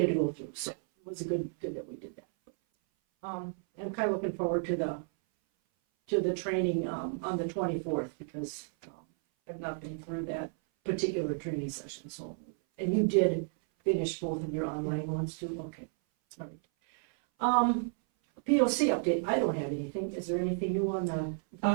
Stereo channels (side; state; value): left; silent; 56 dB below the other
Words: to go through, so it was good that we did that. I'm kind of looking forward to the training, on the 24th, because, I've not been through that particular training session, so, and you did finish both of your online ones too, okay, all right. POC update, I don't have anything, is there anything new on the